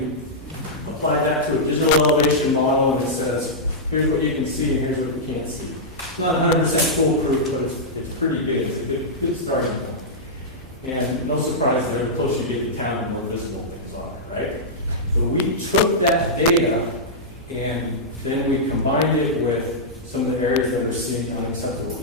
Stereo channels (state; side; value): normal; both; correlation -0.10